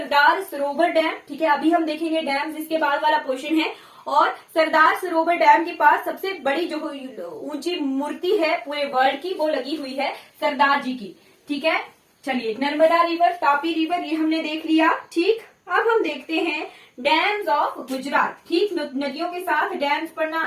सरोवर डैम। ठीक है, अभी हम देखेंगे डैम, जिसके बाद वाला क्वेश्चन है। और सरदार सरोवर डैम के पास सबसे बड़ी जो ऊंची मूर्ति है पूरे वर्ल्ड की, वो लगी हुई है सरदार जी की। ठीक है, चलिए नर्मदा रिवर, तापी रिवर, ये हमने देख लिया। ठीक, अब हम देखते हैं डैम्स ऑफ गुजरात। ठीक, नदियों के साथ डैम्स पढ़ना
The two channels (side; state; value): both; identical; correlation 1.00